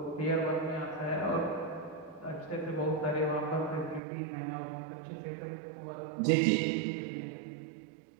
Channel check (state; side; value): drops out; left; at 4.0 s